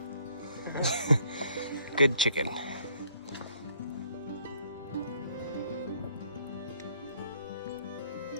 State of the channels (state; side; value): inverted; both; correlation -0.63